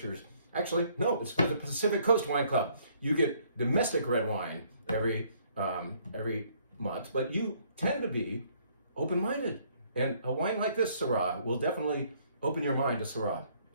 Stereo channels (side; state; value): both; inverted; correlation -0.64